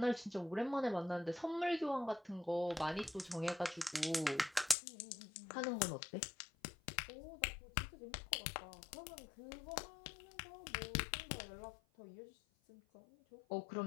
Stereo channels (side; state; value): right; drops out; at 4.8 s